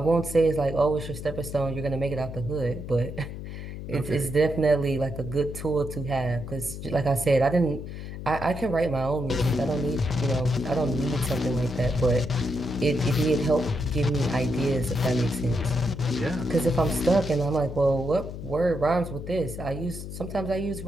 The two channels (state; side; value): noise; left; hum, 9 dB below the sound